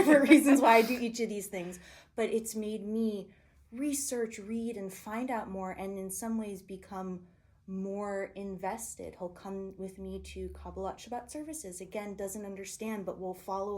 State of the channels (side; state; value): both; identical; correlation 1.00